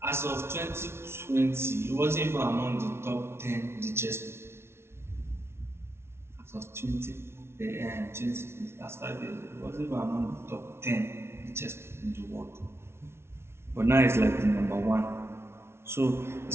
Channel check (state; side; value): late; left; 0.12 ms